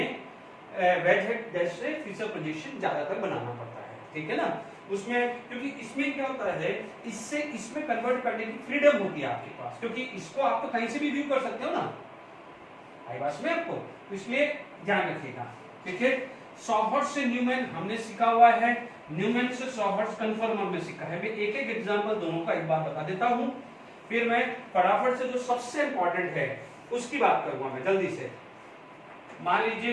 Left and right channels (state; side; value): identical; both; correlation 1.00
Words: वेज हेड डैश से फीचर प्रोजेक्शन ज्यादातर बनाना पड़ता है, ठीक है ना। उसमें क्योंकि इसमें क्या होता है, इससे इसमें कन्वर्ट करने की फ्रीडम होती है आपके पास, क्योंकि इसको आप तो कहीं से भी व्यू कर सकते हो ना, आई बात में आपको, तो इसलिए ध्यान रखिएगा, ठीक है। सॉहर्ट्ज से न्यूमैन हमने सीखा हुआ है, न्यूमैन से सॉहर्ट्ज कन्फर्मर में सीखा है। मैं एक एक एग्जांपल दोनों का एक बार बता देता हूं, फिर मैं फटाफट से जो सबसे इंपॉर्टेंट है उसकी बात करूंगा मैं जल्दी से। मान लीजिए